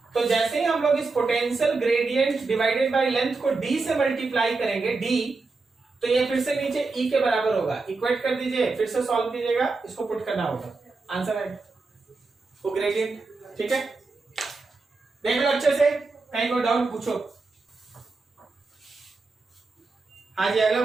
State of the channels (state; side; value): quieter; left; 3.9 dB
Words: तो जैसे ही हम लोग इस potential gradient divided by length को d से मल्टीप्लाई करेंगे, d, तो ये फिर से नीचे E के बराबर होगा। इक्वेट कर दीजिए, फिर से सॉल्व कीजिएगा, इसको पुट करना होगा, आंसर आएगा वो ग्रेडियंट, ठीक है। देख लो अच्छे से, कहीं कोई डाउट पूछो। हाँ जी, अगला